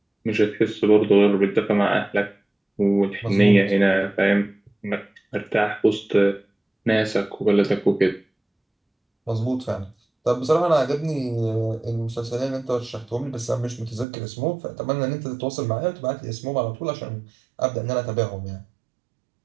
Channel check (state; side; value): drops out; left; at 14.1 s